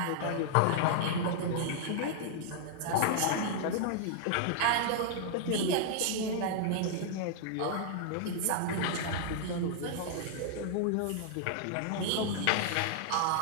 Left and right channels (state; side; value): different; both; correlation -0.01